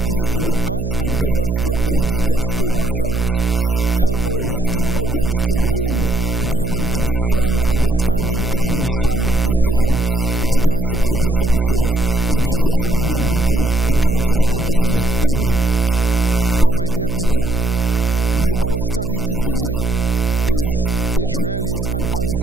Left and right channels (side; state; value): right; noise; hum, 2 dB below the sound